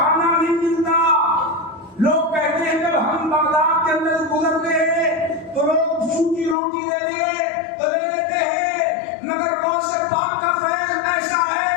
نہیں ملتا۔ لوگ کہتے ہیں جب ہم بغداد کے اندر گزرتے ہیں تو لوگ سوکھی روٹی دے دے تو لے لیتے ہیں، مگر غوث پاک کا فیض ایسا ہے،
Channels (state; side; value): drops out; right; at 6.6 s